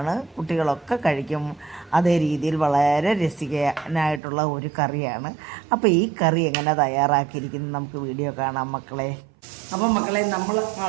കുട്ടികളൊക്കെ കഴിക്കും. അതേ രീതിയിൽ വളരെ രസിക്കാനായിട്ടുള്ള ഒരു കറിയാണ്. അപ്പോൾ ഈ കറി എങ്ങനെ തയ്യാറാക്കിയിരിക്കുന്നത് നമുക്ക് വീഡിയോ കാണാം മക്കളെ. അപ്പം മക്കളെ, നമ്മൾ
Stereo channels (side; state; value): left; drops out; at 4.2 s